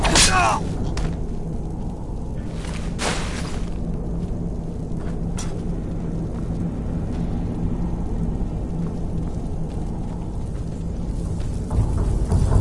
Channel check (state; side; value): identical; both; correlation 1.00